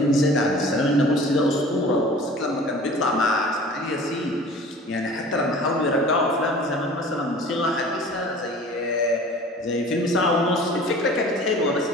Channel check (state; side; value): normal; both; correlation 0.44